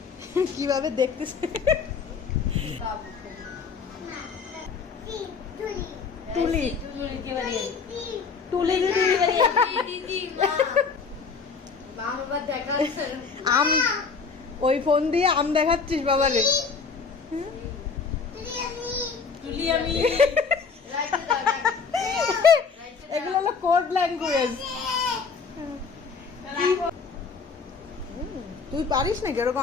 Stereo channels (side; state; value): right; quieter; 5.2 dB